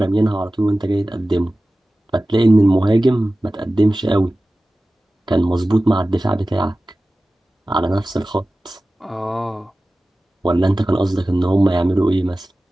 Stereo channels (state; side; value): normal; both; correlation 0.96